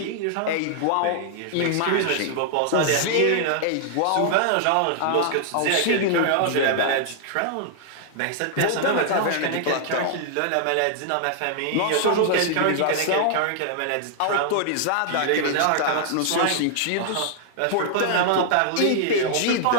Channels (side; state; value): both; different; correlation -0.01